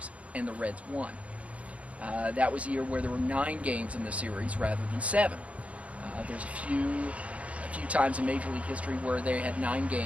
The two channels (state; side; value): late; left; 0.065 ms